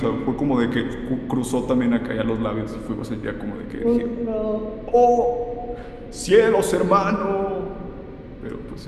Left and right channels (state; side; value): identical; both; correlation 1.00